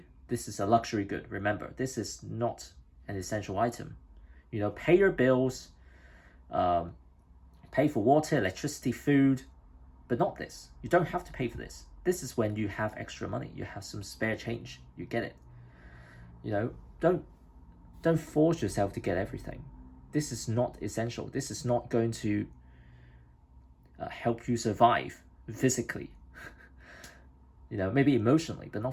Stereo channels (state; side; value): identical; both; correlation 1.00